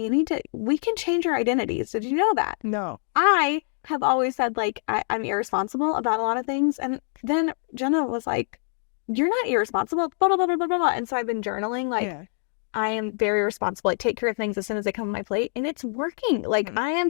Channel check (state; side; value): silent; right; 61 dB below the other